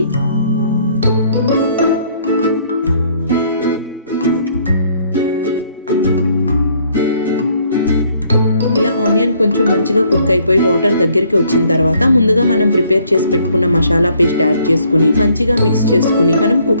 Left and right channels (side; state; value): both; inverted; correlation -0.64